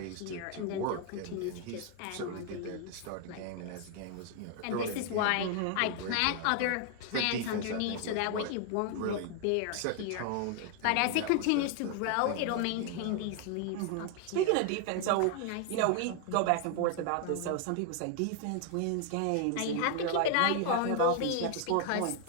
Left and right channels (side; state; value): both; different; correlation 0.00